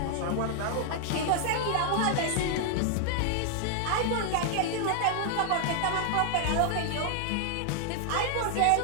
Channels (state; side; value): different; both; correlation 0.00